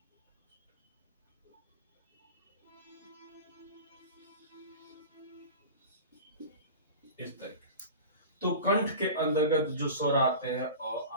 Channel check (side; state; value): both; inverted; correlation -0.34